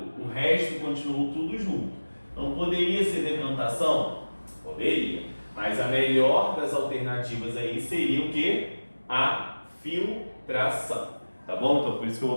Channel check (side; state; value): both; inverted; correlation -1.00